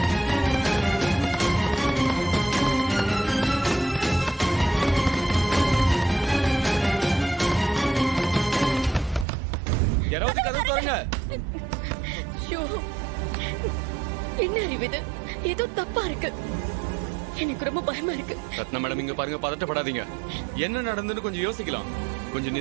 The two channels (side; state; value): left; drops out; at 9.2 s